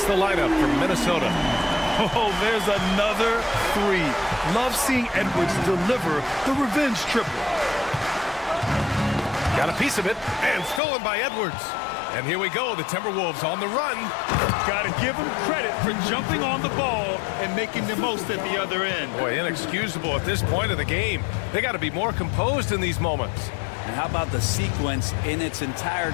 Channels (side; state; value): right; drops out; at 10.8 s